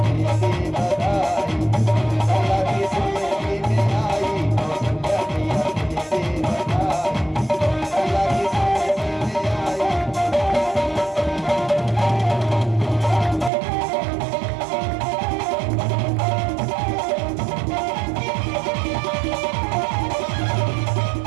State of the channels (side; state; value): left; drops out; at 13.5 s